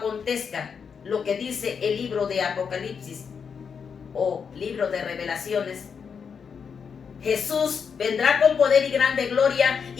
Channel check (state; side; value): quieter; right; 6.4 dB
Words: lo que dice el libro de Apocalipsis o libro de Revelaciones, Jesús vendrá con poder y grande gloria